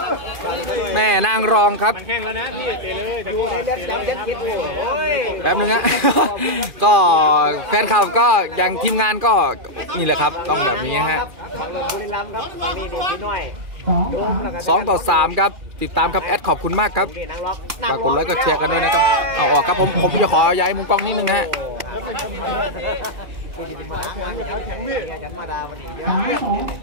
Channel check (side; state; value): left; late; 2.4 ms